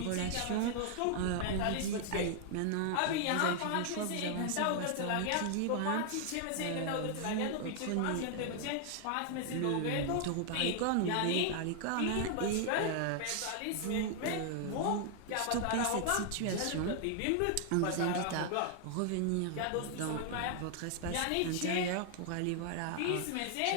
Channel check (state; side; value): different; both; correlation 0.00